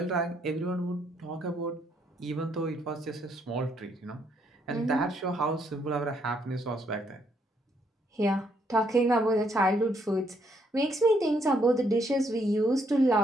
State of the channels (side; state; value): both; normal; correlation 0.73